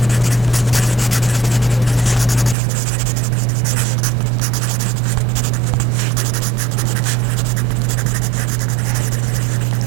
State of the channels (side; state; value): left; drops out; at 2.6 s